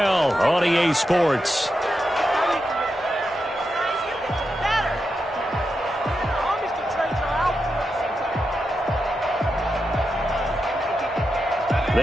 on EA Sports.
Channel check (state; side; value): normal; both; correlation 0.87